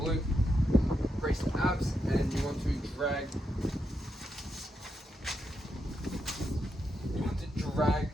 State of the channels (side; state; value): both; normal; correlation 0.83